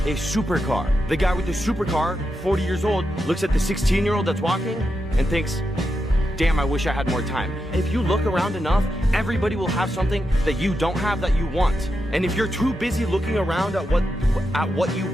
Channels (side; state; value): both; normal; correlation 0.87